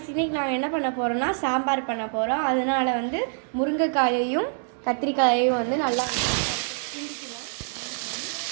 இன்றைக்கி நாங்கள் என்ன பண்ண போகிறோம்னா சாம்பார் பண்ண போகிறோம். அதனால் வந்து முருங்கைக்காயையும் கத்திரிக்காயையும் வந்து நல்லா கிண்டிக்குவோம்.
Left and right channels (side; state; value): left; silent; digital silence